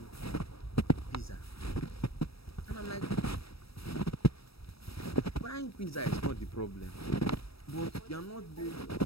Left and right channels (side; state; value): right; late; 0.77 ms